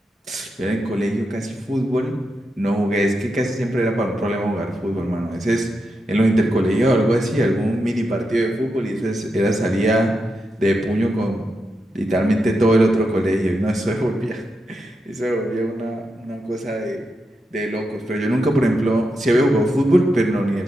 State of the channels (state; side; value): normal; both; correlation 0.86